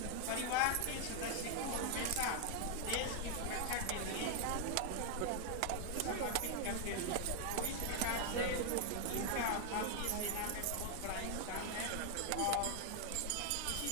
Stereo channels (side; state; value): both; different; correlation 0.00